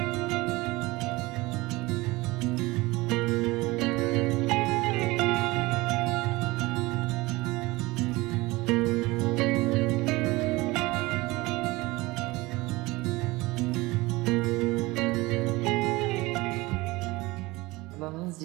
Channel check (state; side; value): quieter; left; 21.4 dB